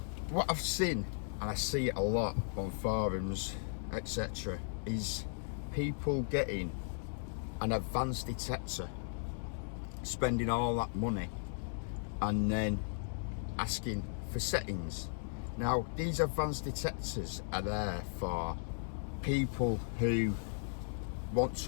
I've seen, and I see it a lot on forums, etc., is people getting an advanced detector, spending all that money, and then asking for settings. Now, these advanced detectors are there for people who want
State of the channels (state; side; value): silent; right; digital silence